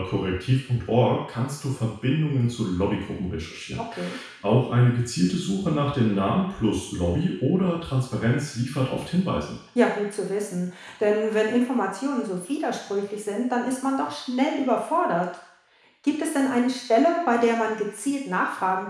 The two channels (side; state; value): both; identical; correlation 1.00